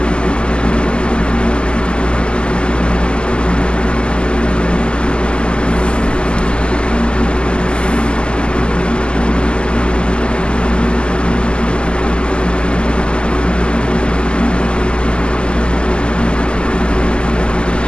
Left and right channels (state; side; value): late; right; 0.050 ms